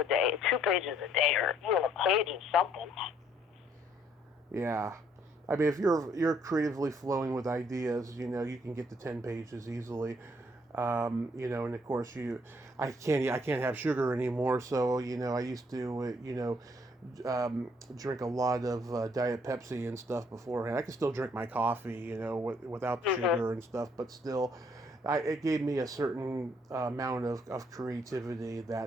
day, 2 pages a day, or even a page of something. Yeah. I mean, if you're creatively flowing with ideas, you can get to 10 pages easily. And of course I can't have sugar anymore. So, I used to, drink a lot of Diet Pepsi and stuff beforehand. I can still drink my coffee, without the sugar and stuff, but still, it gave me a certain amount of creativity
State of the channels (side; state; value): both; normal; correlation 0.66